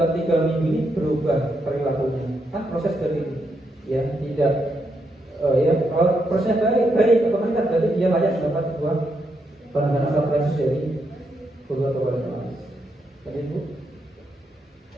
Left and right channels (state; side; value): normal; both; correlation 0.80